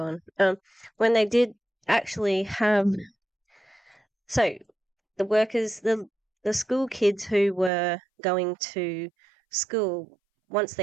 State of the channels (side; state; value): left; drops out; at 7.7 s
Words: When they did actually have, so the workers, the school kids who were going to school, once